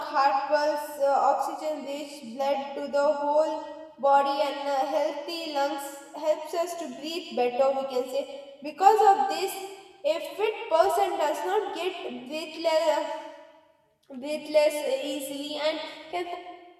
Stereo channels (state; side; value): identical; both; correlation 1.00